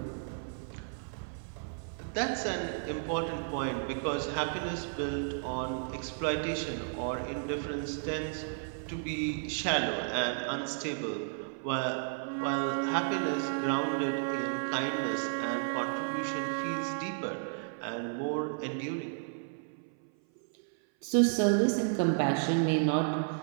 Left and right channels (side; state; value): left; silent; 56 dB below the other